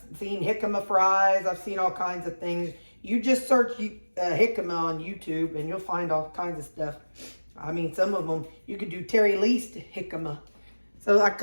seen jicama fries. I've seen all kinds of things. You just search jicama on YouTube and you'll find all kinds of stuff. I mean, some of them, you could do Terri Leist jicama. So I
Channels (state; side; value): inverted; both; correlation -1.00